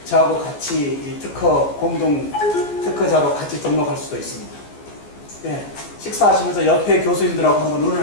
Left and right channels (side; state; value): right; late; 14 ms